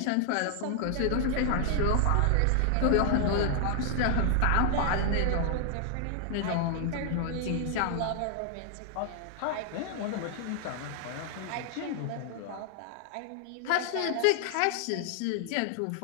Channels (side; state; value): both; different; correlation 0.00